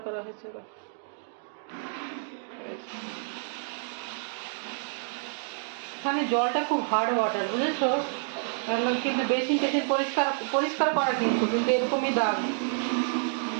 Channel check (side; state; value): left; silent; 59 dB below the other